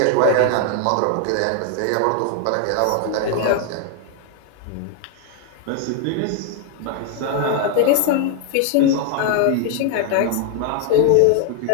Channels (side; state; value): both; different; correlation 0.00